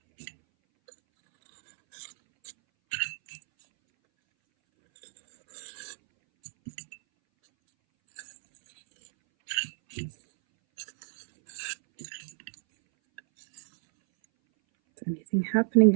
Is anything happening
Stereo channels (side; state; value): left; silent; 58 dB below the other